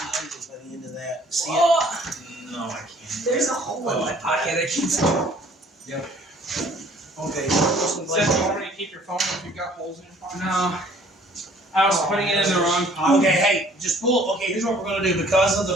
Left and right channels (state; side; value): normal; both; correlation 0.56